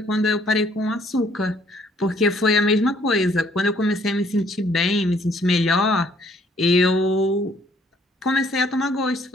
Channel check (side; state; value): both; normal; correlation 0.63